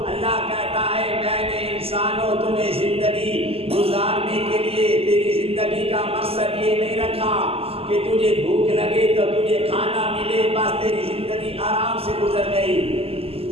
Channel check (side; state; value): left; late; 0.28 ms